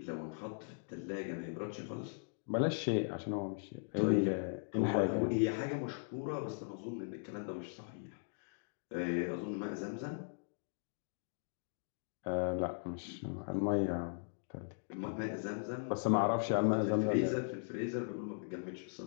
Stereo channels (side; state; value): right; silent; digital silence